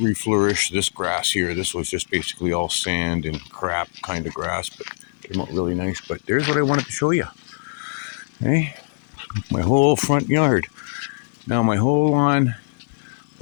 this grass here. This was just basically all sand and crap kind of grass, but came out really nice. But there's what I wanted to show you. Okay? My whole front yard. Now my whole lawn,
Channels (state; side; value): silent; right; 59 dB below the other